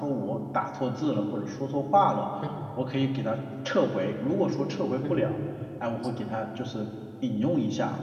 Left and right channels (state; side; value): identical; both; correlation 1.00